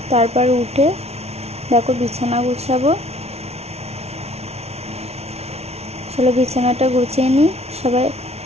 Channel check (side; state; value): left; late; 0.31 ms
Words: তারপর উঠে দেখো বিছানা গুছাবো। চলো বিছানাটা গুছিয়ে নিই। সবাই